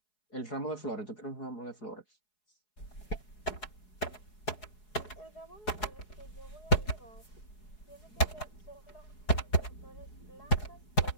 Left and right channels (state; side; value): late; right; 4.7 ms